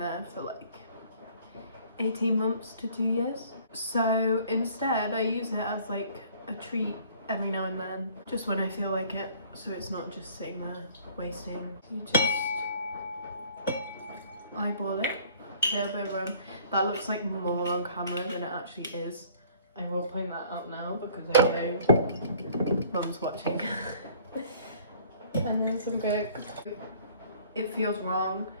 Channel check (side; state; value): both; inverted; correlation -0.55